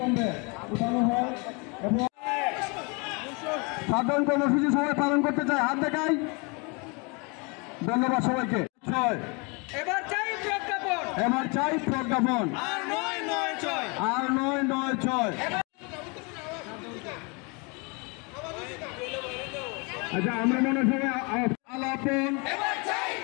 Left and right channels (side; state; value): right; quieter; 30.8 dB